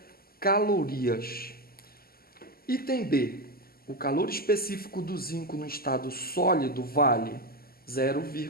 calorias. Item B. O calor específico do zinco no estado sólido vale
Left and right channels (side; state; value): right; late; 0.44 ms